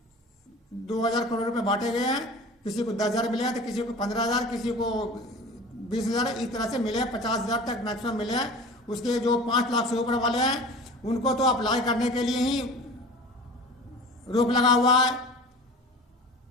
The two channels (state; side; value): normal; both; correlation 0.38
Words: 2,000 करोड़ रुपए बांटे गए हैं। किसी को 10,000 मिले हैं तो किसी को 15,000, किसी को 20,000, इस तरह से मिले हैं। 50,000 तक मैक्सिमम मिले हैं। उसके जो 5 लाख से ऊपर वाले हैं उनको तो अप्लाई करने के लिए ही रोक लगा हुआ है।